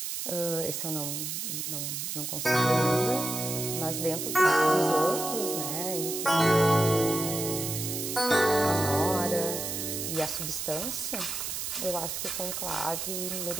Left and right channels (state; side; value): noise; right; hiss, 4 dB below the sound